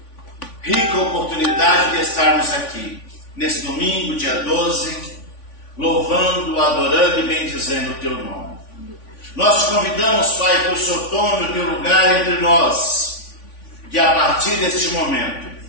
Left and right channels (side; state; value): right; late; 3.5 ms